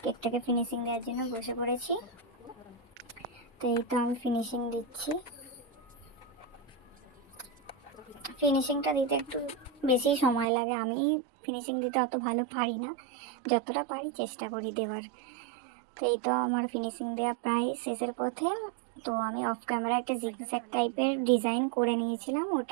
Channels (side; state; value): left; drops out; at 10.5 s